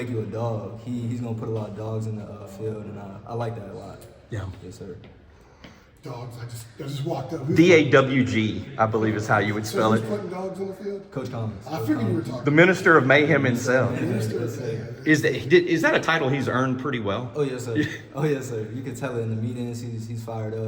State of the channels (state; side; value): identical; both; correlation 1.00